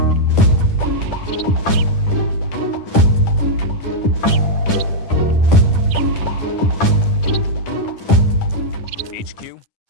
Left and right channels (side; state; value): right; late; 10 ms